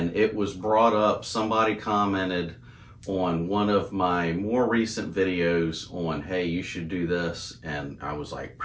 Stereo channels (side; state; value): both; identical; correlation 1.00